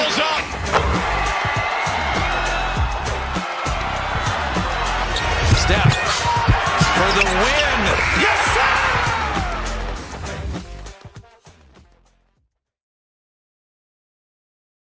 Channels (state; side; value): identical; both; correlation 1.00